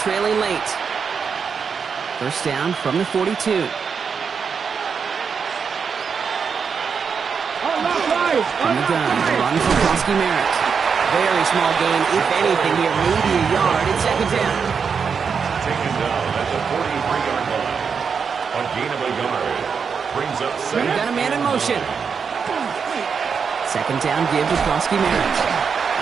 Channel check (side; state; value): left; quieter; 6.1 dB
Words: late. First down from the 42. From the gun, run from Krosky Merritt. Very small gain, if anything here, maybe a yard. It's second down. Taken down at the 43-yard line. A gain of a yard. Brings up second. We've got a man in motion. Second down give to Koski Merritt.